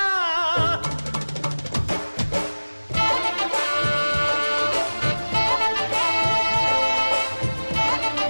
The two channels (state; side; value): inverted; both; correlation -1.00